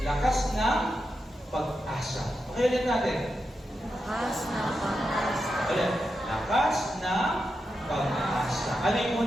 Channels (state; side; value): normal; both; correlation 0.87